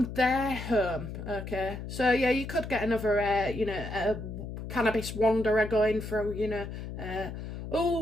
their home, okay? So, yeah, you could get another, you know, cannabis wanderer going through, you know,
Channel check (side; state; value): left; noise; hum, 8 dB below the sound